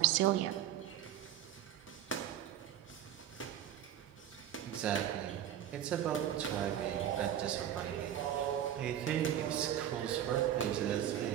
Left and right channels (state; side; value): quieter; left; 10.9 dB